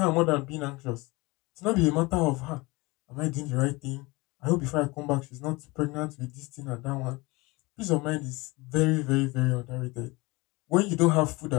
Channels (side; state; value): right; quieter; 23.8 dB